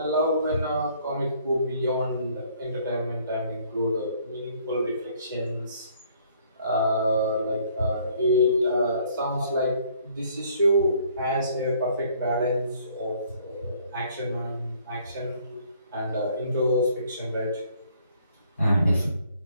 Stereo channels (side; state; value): both; inverted; correlation -0.61